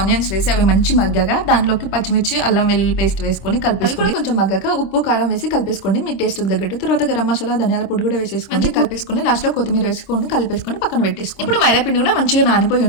వేసి అవి మంచి మగ్గాక దాంట్లోకి పచ్చిమిర్చి, అల్లం వెల్లుల్లి పేస్ట్ వేసుకొని కలిపేసుకొని కొంచెం మగ్గాక ఉప్పు, కారం వేసి కలిపేసుకోండి మీ టేస్ట్ తగ్గట్టు. తర్వాత గరం మసాలా, ధనియాల పొడి కూడా వేసేసుకొని కలిపేసుకొని లాస్ట్ లో కొత్తిమీర వేసుకొని కలిపేసుకొని పక్కన పెట్టేసుకోండి. ఇప్పుడు మైదా పిండి కూడా మంచిగా నానిపోయి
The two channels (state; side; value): late; right; 26 ms